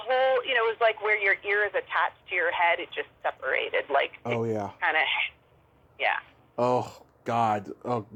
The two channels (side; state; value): both; identical; correlation 1.00